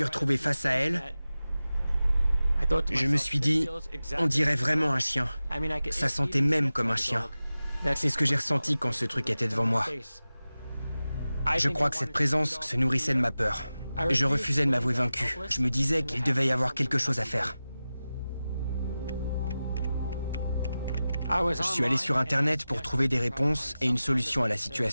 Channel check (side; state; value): both; inverted; correlation -0.95